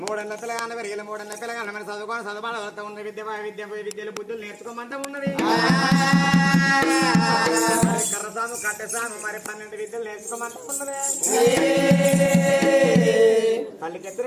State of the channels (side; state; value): both; identical; correlation 1.00